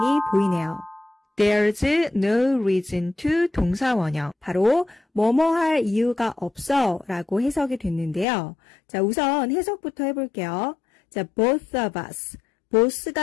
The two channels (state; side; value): drops out; right; at 8.2 s